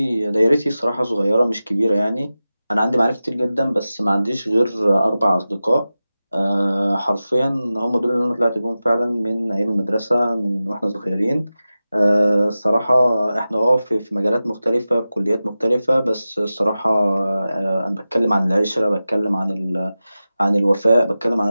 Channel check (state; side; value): inverted; both; correlation -0.94